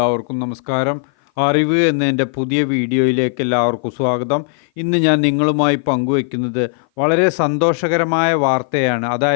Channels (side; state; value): right; silent; 56 dB below the other